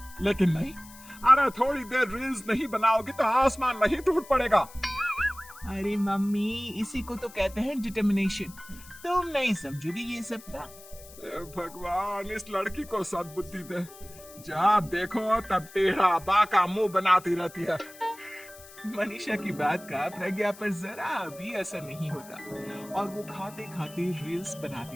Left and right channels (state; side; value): noise; left; hiss, 19 dB below the sound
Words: लेकिन नहीं, अरे थोड़ी देर रील्स नहीं बनाओगे तो आसमान नहीं टूट पड़ेगा। अरे मम्मी, इसी को तो कहते हैं डिटर्मिनेशन। तुम नहीं समझोगी ये सब का। भगवान, इस लड़की को सद्बुद्धि दे। जब देखो तब टेढ़ा बाका मुंह बनाती रहती है। मनीषा की बात का प्रज्ञा पर जरा भी असर नहीं होता और वो खाते खाते रील्स